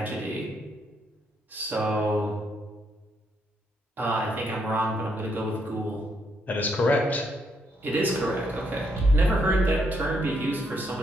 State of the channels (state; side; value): normal; both; correlation 0.75